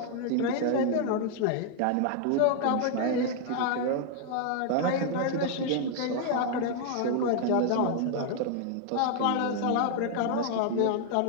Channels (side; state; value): both; different; correlation 0.00